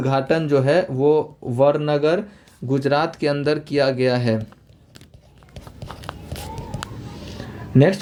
जो है वो वरनगर गुजरात के अंदर किया गया है। नेक्स्ट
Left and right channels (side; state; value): both; identical; correlation 1.00